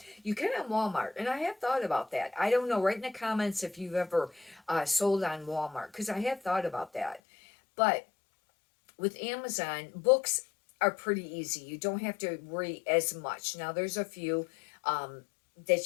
You can on Walmart, and I have thought about that. I don't know. Write in the comments if you've ever sold on Walmart, because I have thought about that. But with Amazon, books are pretty easy. You don't have to worry as much. Now there's a few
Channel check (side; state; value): right; drops out; at 7.2 s